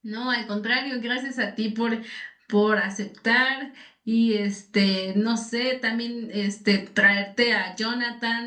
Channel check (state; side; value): identical; both; correlation 1.00